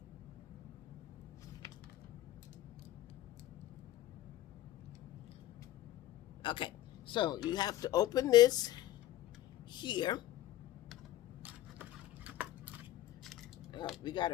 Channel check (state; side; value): quieter; right; 14.3 dB